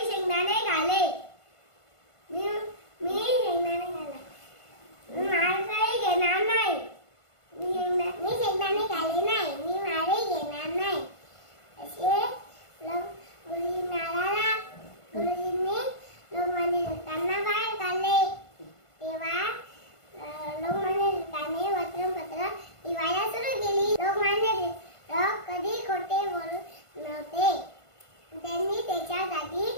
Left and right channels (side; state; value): right; late; 1.5 ms